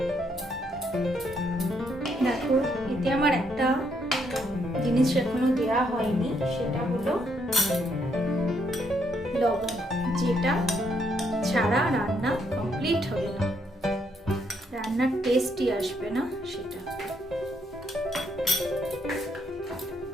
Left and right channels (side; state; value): both; normal; correlation 0.73